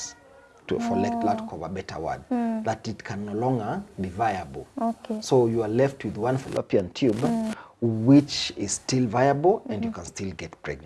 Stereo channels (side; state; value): both; identical; correlation 1.00